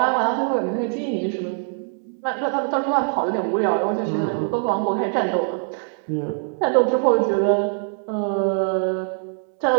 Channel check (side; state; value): left; silent; digital silence